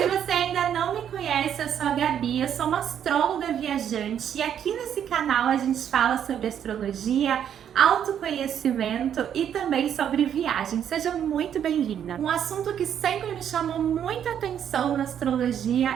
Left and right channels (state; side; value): quieter; left; 9.2 dB